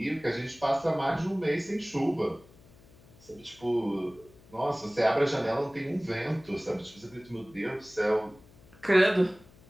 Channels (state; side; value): noise; left; hum, 25 dB below the sound